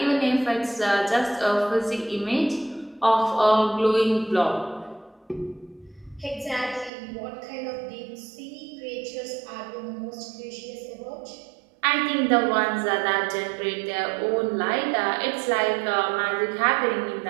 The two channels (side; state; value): left; drops out; at 6.9 s